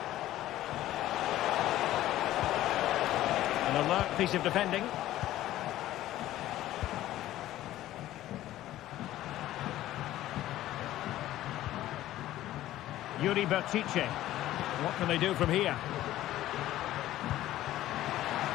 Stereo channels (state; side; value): quieter; right; 14.3 dB